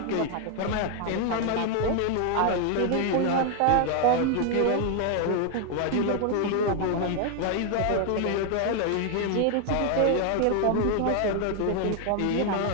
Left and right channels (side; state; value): both; different; correlation 0.00